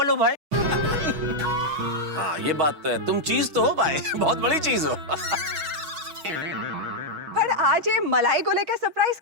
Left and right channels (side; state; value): left; late; 6.3 ms